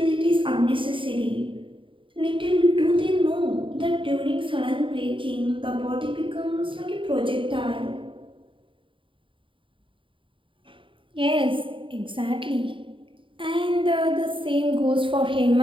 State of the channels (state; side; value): late; left; 0.25 ms